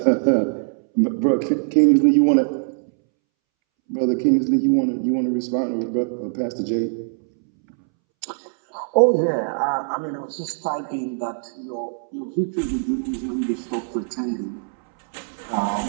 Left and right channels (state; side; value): silent; left; 64 dB below the other